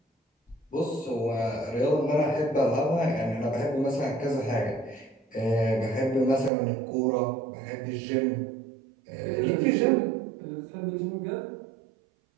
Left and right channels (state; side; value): drops out; left; at 6.5 s